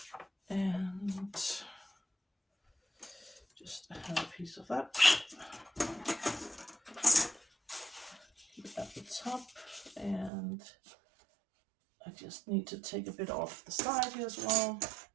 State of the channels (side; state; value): left; drops out; at 10.3 s